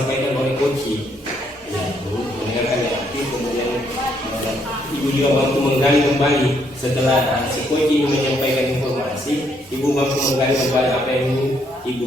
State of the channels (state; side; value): normal; both; correlation 0.72